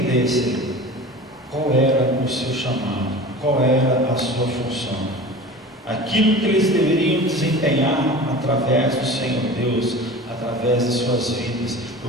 qual era o seu chamado, qual era a sua função, aquilo que eles deveriam desempenhar através do Senhor Deus, através de suas vidas,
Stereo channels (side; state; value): both; normal; correlation 0.37